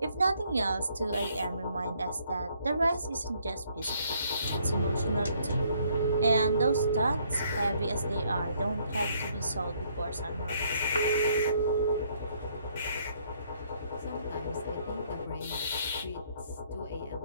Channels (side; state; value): both; inverted; correlation -0.67